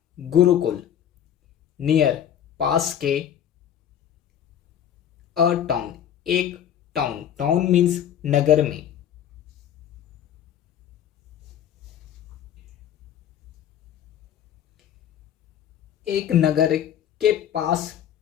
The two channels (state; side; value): quieter; right; 9.9 dB